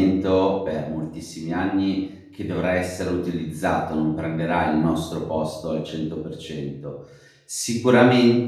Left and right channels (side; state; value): both; identical; correlation 1.00